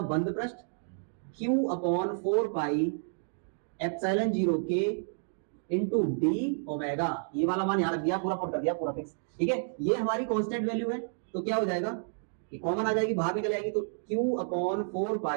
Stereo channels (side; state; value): left; silent; digital silence